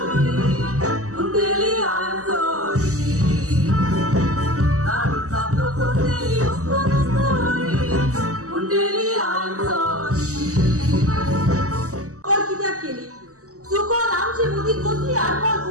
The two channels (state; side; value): late; left; 0.66 ms